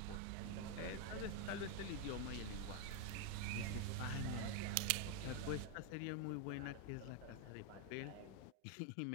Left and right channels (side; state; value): both; different; correlation 0.01